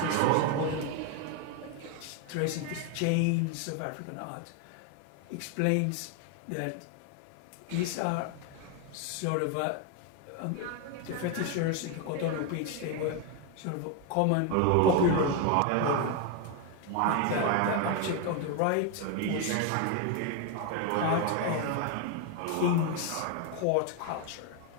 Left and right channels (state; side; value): different; both; correlation 0.01